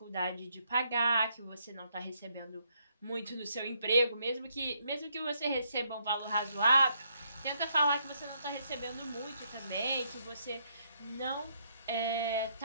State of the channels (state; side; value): inverted; both; correlation -0.74